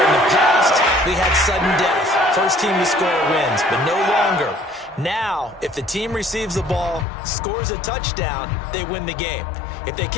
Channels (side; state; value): right; drops out; at 7.1 s